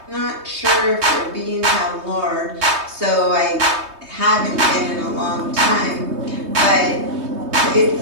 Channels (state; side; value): late; left; 3.2 ms